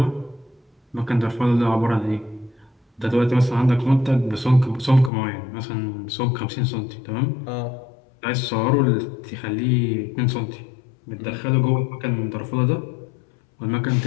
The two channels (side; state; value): right; drops out; at 5.1 s